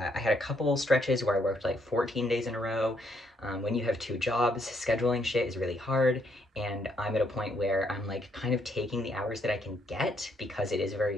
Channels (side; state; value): both; normal; correlation 0.72